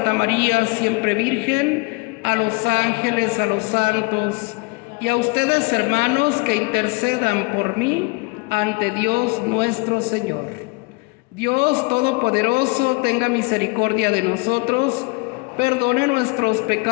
María, siempre Virgen, a los ángeles, a los santos y a ustedes, hermanos, que intercedan por mí ante Dios nuestro Señor. Dios Todopoderoso tenga misericordia de nosotros, perdone nuestros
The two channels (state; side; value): quieter; right; 27.4 dB